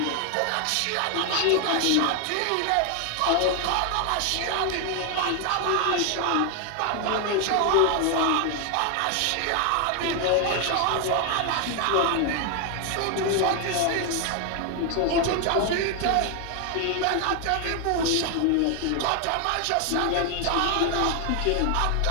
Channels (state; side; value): different; both; correlation 0.01